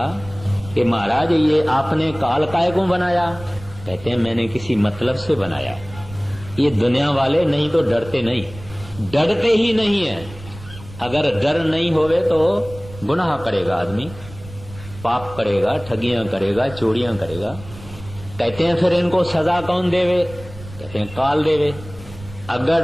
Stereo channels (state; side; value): noise; right; rumble, 17 dB below the sound